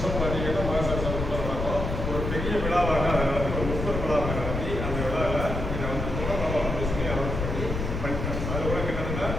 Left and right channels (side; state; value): left; noise; rumble, 3 dB below the sound